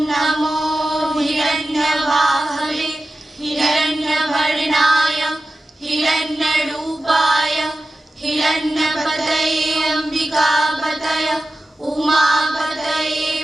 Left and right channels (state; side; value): normal; both; correlation 0.94